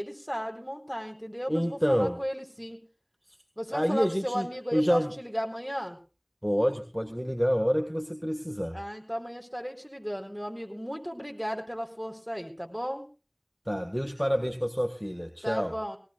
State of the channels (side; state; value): both; identical; correlation 1.00